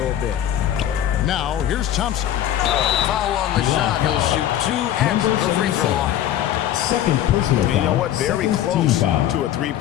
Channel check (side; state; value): right; quieter; 11.6 dB